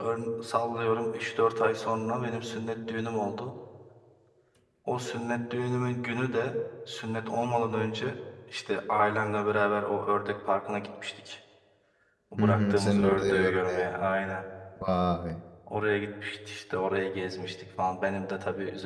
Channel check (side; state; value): both; identical; correlation 1.00